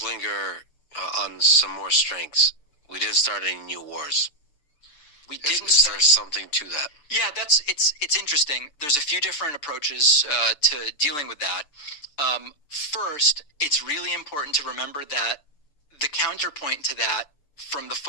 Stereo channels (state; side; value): late; right; 6.8 ms